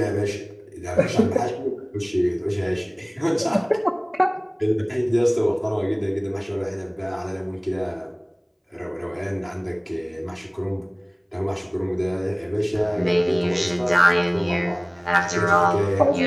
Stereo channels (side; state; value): both; identical; correlation 1.00